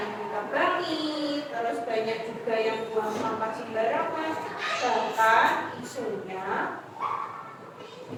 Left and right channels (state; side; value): identical; both; correlation 1.00